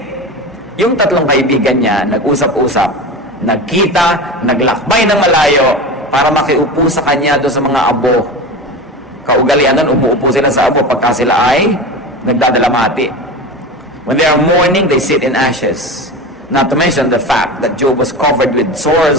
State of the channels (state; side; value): normal; both; correlation 0.28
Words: Yung tatlong kaibigan niya, nag-usap-usap, nagkita, naglakbay ng malayo para makiupo sa kanya doon sa mga abo. Kaugalian nun, umuupo sila sa abo pagka sila ay nagdadalamati. When they are mourning, they sit in ashes. Not to mention the fact that Job was covered with